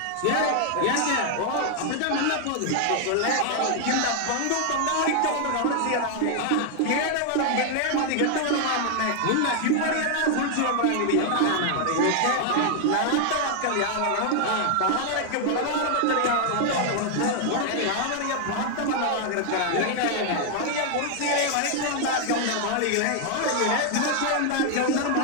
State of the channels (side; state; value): both; different; correlation 0.00